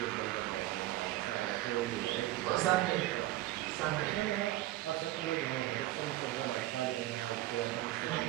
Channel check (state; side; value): quieter; left; 16.0 dB